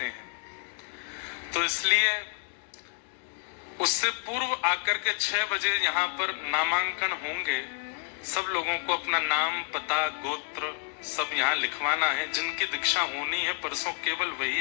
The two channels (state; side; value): silent; right; 57 dB below the other